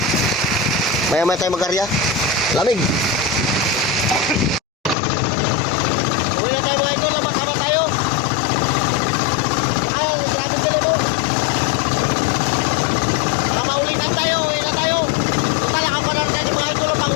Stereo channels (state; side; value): drops out; right; at 5.0 s